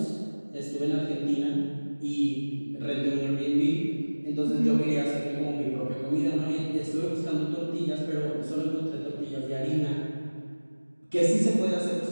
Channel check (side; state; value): both; inverted; correlation -1.00